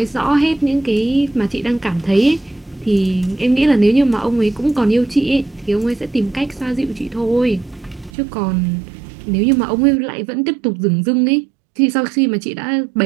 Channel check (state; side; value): drops out; left; at 8.1 s